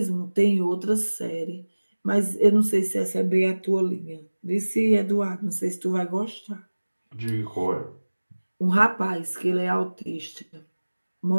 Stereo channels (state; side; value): inverted; both; correlation -1.00